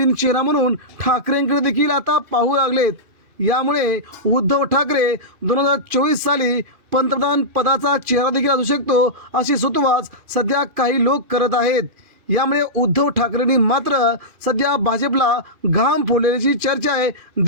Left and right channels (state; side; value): late; left; 2.4 ms